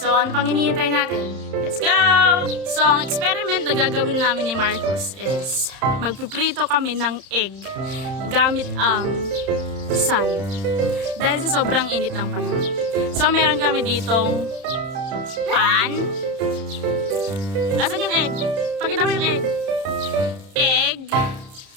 ano pang hinihintay natin? Let's go! So ang experiment na gagawin namin ni Marcus is magpiprito kami ng egg gamit ang sun. Dahil sa sobrang init ng panahon. So meron kami ditong pan. Asan yung egg? Pakita mo yung egg. Egg,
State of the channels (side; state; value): left; late; 31 ms